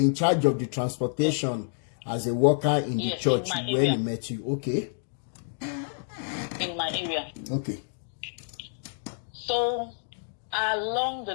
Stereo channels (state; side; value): silent; right; digital silence